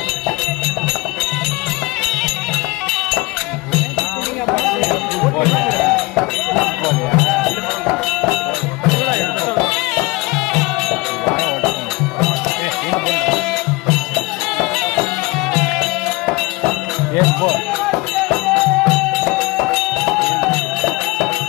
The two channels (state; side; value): quieter; right; 23.1 dB